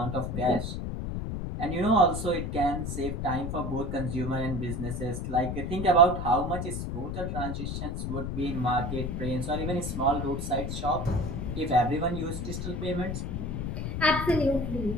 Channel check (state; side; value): noise; left; rumble, 3 dB below the sound